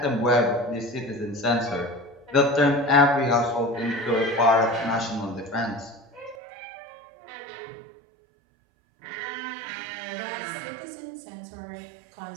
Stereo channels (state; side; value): drops out; left; at 6.4 s